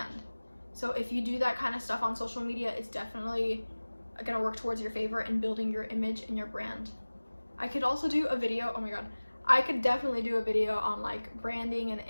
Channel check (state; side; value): inverted; both; correlation -1.00